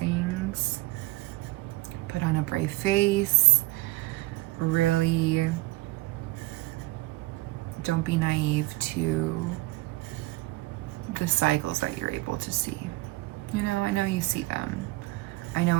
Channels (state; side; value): quieter; left; 20.7 dB